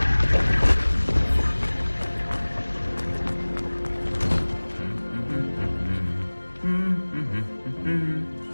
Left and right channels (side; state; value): both; inverted; correlation -1.00